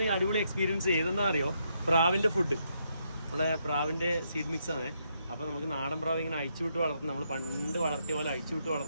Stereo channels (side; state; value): both; inverted; correlation -0.77